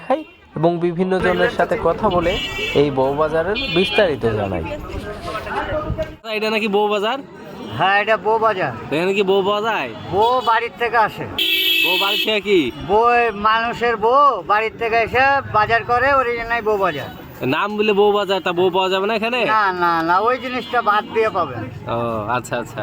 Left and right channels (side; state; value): both; identical; correlation 1.00